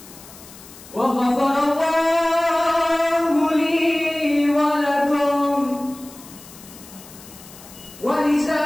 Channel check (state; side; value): noise; left; hiss, 19 dB below the sound